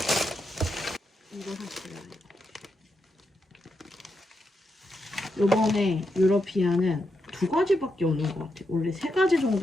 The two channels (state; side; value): normal; both; correlation 0.84